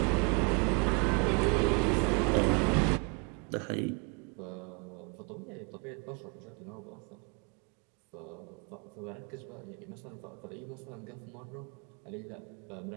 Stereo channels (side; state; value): left; quieter; 33.7 dB